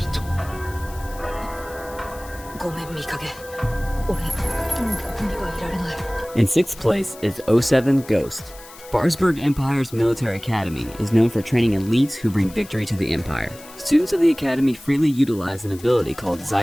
In 6th place is 07 Ghost. Barsberg Empire's military academy is known for training elites who bring victory to the empire. Students of the academy freely utilize an ability called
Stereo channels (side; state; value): left; noise; hiss, 19 dB below the sound